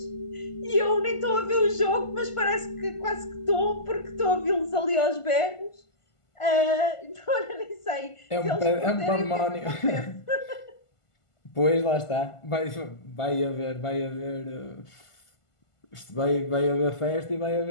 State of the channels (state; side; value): late; right; 1.5 ms